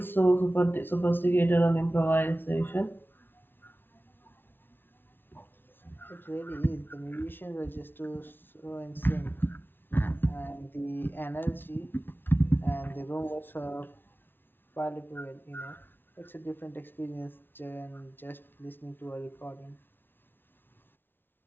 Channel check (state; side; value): late; right; 0.10 ms